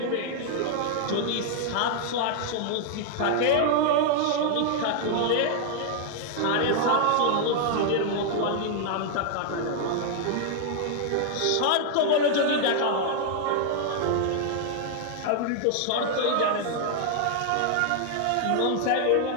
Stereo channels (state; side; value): different; both; correlation 0.00